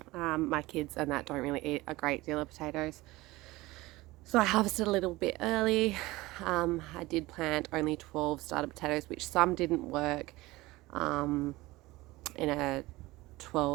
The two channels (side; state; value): left; quieter; 19.8 dB